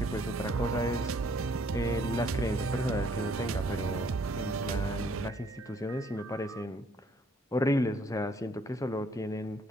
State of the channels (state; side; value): normal; both; correlation 0.64